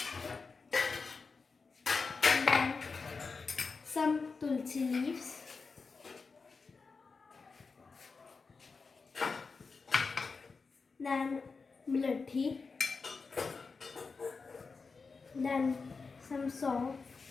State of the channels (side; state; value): right; quieter; 4.6 dB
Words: Then some tulsi leaves. Then mlathi. Then some salt.